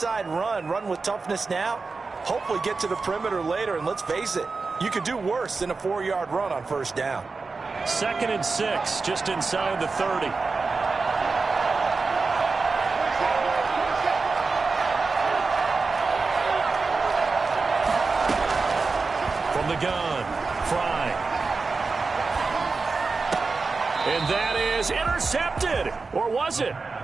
run with toughness now, hopefully get to the perimeter later, and let's face it, you could do worse than a 4-yard run on first down. 2nd and 6, just inside the 30. From the gun, Fry. And that is intercepted. Or was it?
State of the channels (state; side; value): quieter; left; 4.2 dB